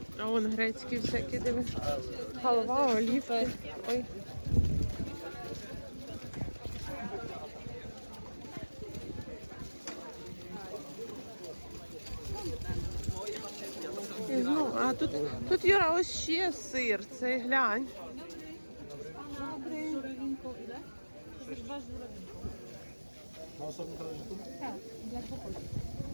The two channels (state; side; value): inverted; both; correlation -1.00